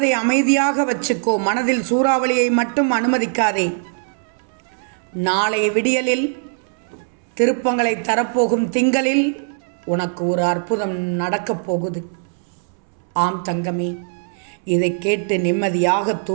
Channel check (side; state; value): left; silent; 65 dB below the other